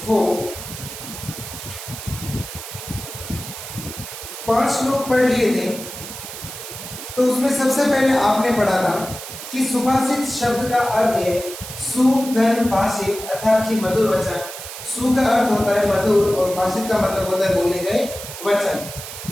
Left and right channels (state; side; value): noise; right; hiss, 10 dB below the sound